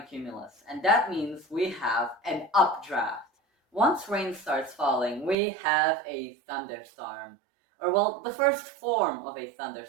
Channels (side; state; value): left; drops out; at 5.4 s